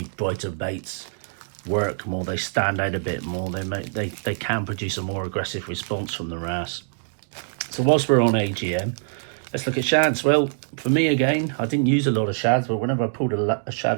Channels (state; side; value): silent; left; digital silence